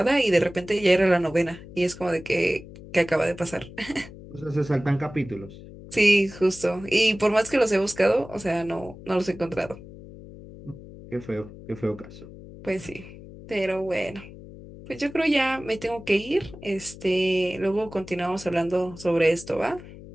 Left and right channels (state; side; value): noise; left; hum, 16 dB below the sound